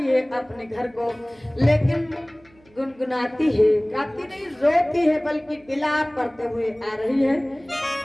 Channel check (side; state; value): right; noise; hum, 30 dB below the sound